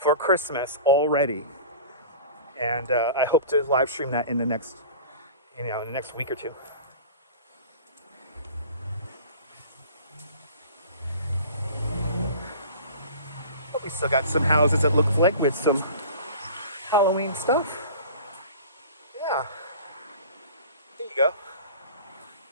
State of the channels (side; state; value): both; inverted; correlation -0.39